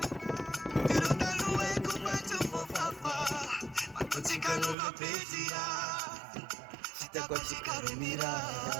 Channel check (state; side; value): drops out; left; at 4.8 s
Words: Chicano va pedia, chita kwa chicano